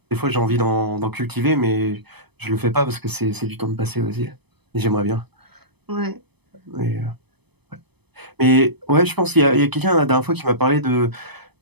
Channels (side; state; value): left; late; 0.98 ms